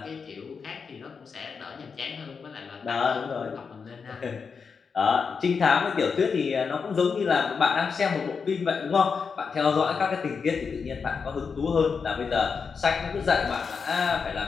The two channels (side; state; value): right; quieter; 5.6 dB